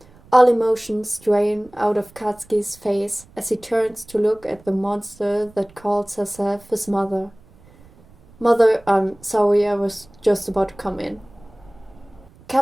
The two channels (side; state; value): right; noise; rumble, 26 dB below the sound